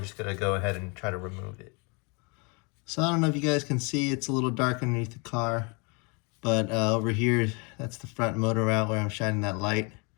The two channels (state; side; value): quieter; right; 32.0 dB